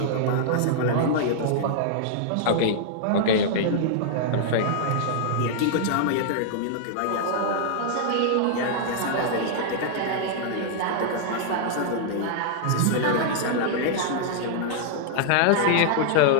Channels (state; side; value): different; both; correlation -0.01